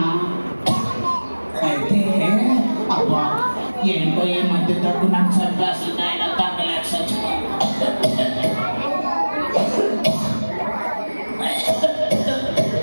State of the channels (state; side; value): inverted; both; correlation -1.00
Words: అయితే అబ్బా ఏంటో ఈ మధ్య తగ్గు నాకు చంపేస్తుంది. ఆయన తగ్గలేక చచ్చిపో.